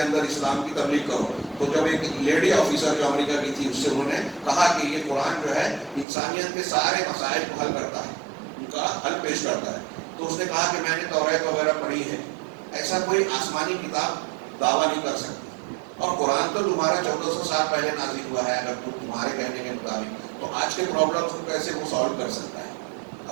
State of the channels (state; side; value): drops out; left; at 6.1 s